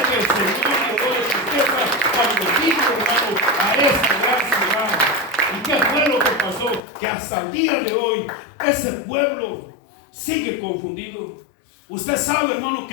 que el Señor llegó de su tierra cuando vino, hermano, a esta gran ciudad. ¿Y qué fue lo que pasó? Que hasta el día de hoy ese pueblo sigue confundido. Usted sabe, hermano,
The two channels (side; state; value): right; drops out; at 6.8 s